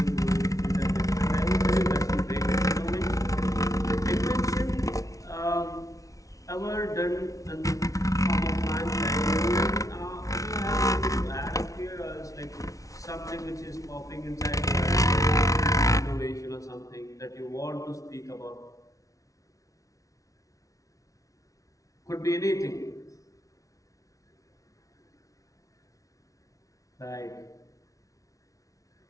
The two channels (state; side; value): late; right; 0.17 ms